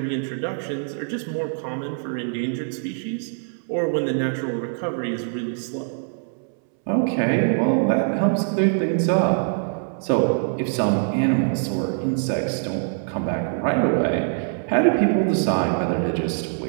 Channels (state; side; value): silent; left; 63 dB below the other